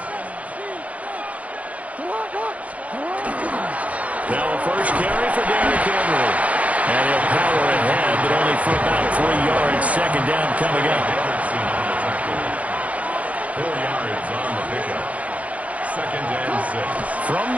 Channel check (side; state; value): left; late; 0.067 ms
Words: Now a first carry for Derrick Henry. And he'll power ahead, but only for about 3 yards. Second down coming up. 4 yards on the pickup. Second and 6. From